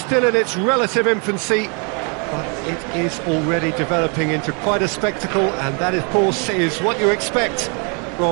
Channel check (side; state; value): left; quieter; 35.6 dB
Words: in its relative infancy, but it is already developing into quite a spectacle, and that, of course, is what you expect